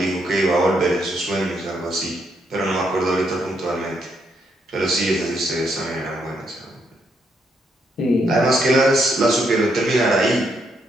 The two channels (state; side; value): normal; both; correlation 0.76